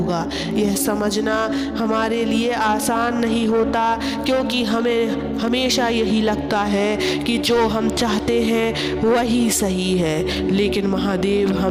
यह समझना हमारे लिए आसान नहीं होता, क्योंकि हमें हमेशा यही लगता है कि जो हम चाहते हैं वही सही है। लेकिन महादेव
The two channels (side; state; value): both; identical; correlation 1.00